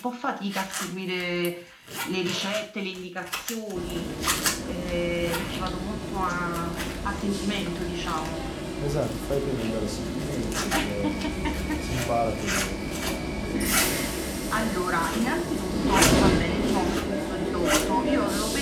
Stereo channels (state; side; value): identical; both; correlation 1.00